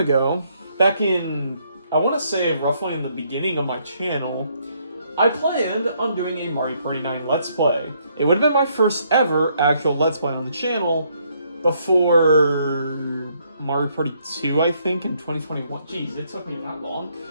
back in, I want to say roughly in the beginning of my channel, I planned on doing a Mario Party 9 Let's Play. It would have been my first ever actual Let's Play on the channel before Mario Party 2, I think, in 2021. Jeez, it took me that long.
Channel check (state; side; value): inverted; both; correlation -0.71